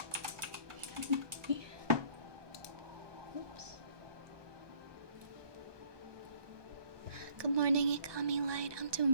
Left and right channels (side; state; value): left; late; 1.2 ms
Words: Oops. Good morning, Ikami Light. I'm doing